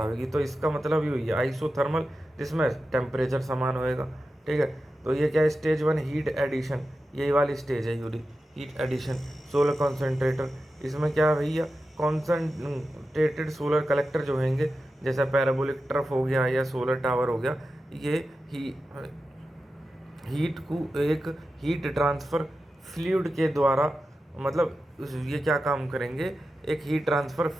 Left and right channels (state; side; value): normal; both; correlation 0.92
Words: होगी। तो इसका मतलब ये हुई है आइसोथर्मल, जिसमें टेम्परेचर समान होएगा, ठीक है। तो ये क्या है, स्टेज 1 हीट एडिशन, यही वाली स्टेज है यूरी हीट एडिशन। सोलर कॉन्सेंट्रेटर, इसमें क्या है भैया, कॉन्सेंट्रेटेड सोलर कलेक्टर जो होंगे, जैसा पैराबोलिक ट्रफ हो गया या सोलर टावर हो गया, ये हीट को एक हीट ट्रांसफ़र फ्लूइड के द्वारा, मतलब ये क्या काम करेंगे, एक हीट ट्रांसफ़र